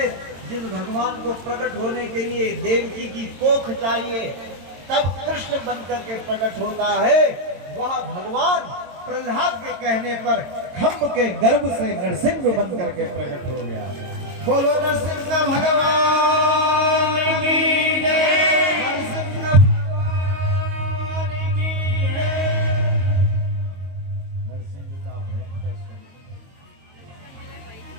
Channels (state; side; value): late; left; 22 ms